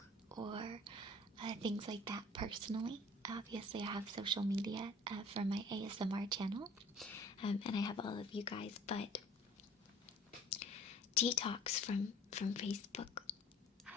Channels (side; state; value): both; normal; correlation 0.49